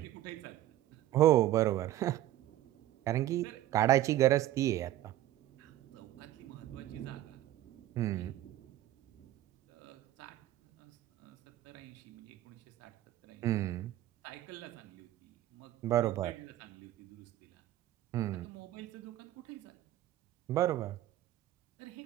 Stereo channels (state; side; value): quieter; left; 13.9 dB